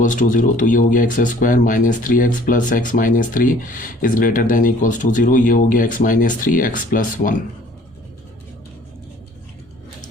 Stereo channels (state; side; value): normal; both; correlation 0.53